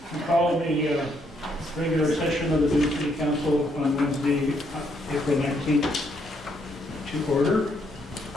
We call the regular session of the Dune City Council on Wednesday, April 19th to order.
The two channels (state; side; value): normal; both; correlation 0.73